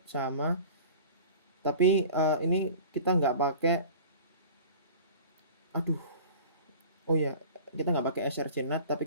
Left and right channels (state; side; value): inverted; both; correlation -0.40